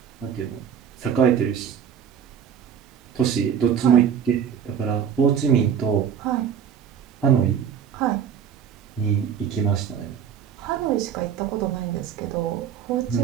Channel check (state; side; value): quieter; left; 8.1 dB